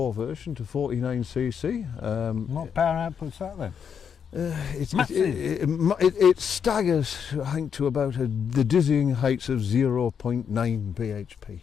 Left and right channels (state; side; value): quieter; right; 7.3 dB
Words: version, to 49cc. What power output's that then? It staggers, I think, to about the dizzying heights of 0.9 bhp.